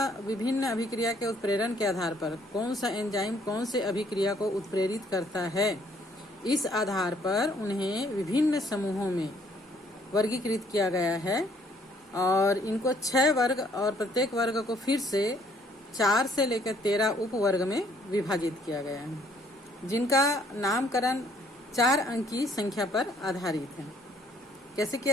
विभिन्न अभिक्रिया के उत्प्रेरण के आधार पर कौन सा एंजाइम कौन से अभिक्रिया को उत्प्रेरित करता है, इस आधार पर उन्हें विभिन्न समूहों में वर्गीकृत किया गया है और इनको 6 वर्ग और प्रत्येक वर्ग को फिर से 4 से लेकर 13 उप वर्ग में विभाजित किया गया है, जिनका नामकरण 4 अंक की संख्या पर आधारित है। कैसे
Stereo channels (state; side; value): normal; both; correlation 0.64